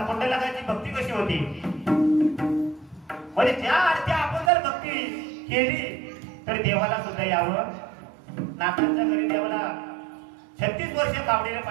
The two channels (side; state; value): left; drops out; at 4.5 s